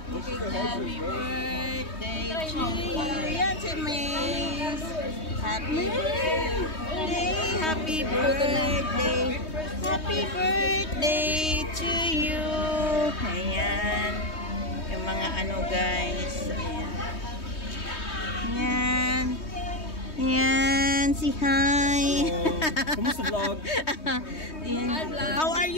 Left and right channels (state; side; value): late; right; 3.2 ms